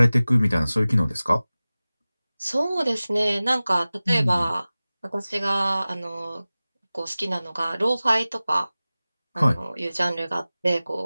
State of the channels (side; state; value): both; inverted; correlation -0.97